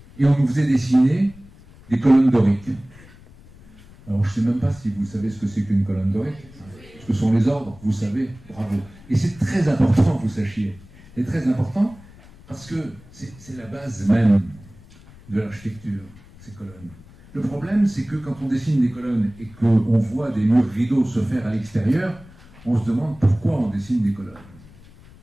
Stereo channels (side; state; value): left; noise; rumble, 23 dB below the sound